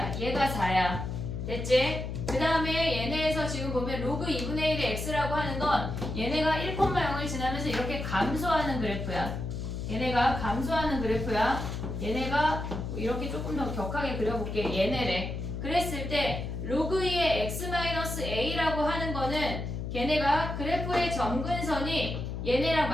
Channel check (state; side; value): noise; left; hum, 5 dB below the sound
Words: 얘가 4야. 됐지? 그 다음에 얘네에서 지금 보면 로그 2분의 1의 x라고 하는 건 얘네가 1,0을 지나면서 이렇게 감소하는 그래프야. 얘네가 감소하는 그래프야. 얘네가 이렇게 조금 더 격하게 그려볼게. 얘네래. 그랬을 때 로그 2의 x-a라고 하는 거는 걔네가 그래프의 점근선이 얘네랑